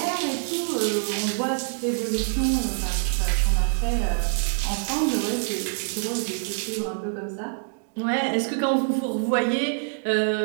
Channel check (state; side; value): silent; left; digital silence